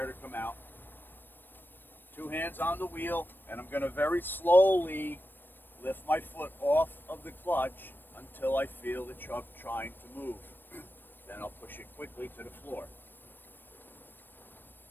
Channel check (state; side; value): late; right; 0.094 ms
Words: to come out. 2 hands on the wheel, and I'm going to very slowly lift my foot off of the clutch until I feel the truck trying to move. Then I'll push it quickly to the floor.